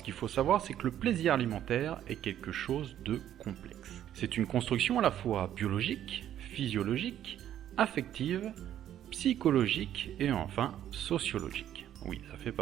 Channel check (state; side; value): quieter; left; 11.1 dB